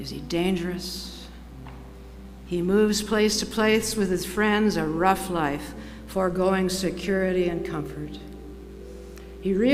he dangerous? He moves place to place with his friends, a rough life, foregoing security and comfort. He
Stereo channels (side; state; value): both; identical; correlation 1.00